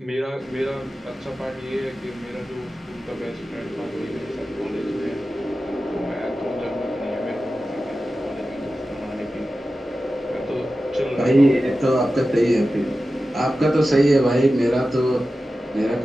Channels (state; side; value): normal; both; correlation 0.93